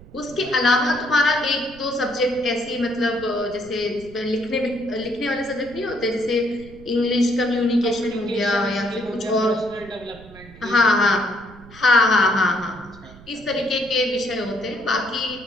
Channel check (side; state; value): right; noise; rumble, 20 dB below the sound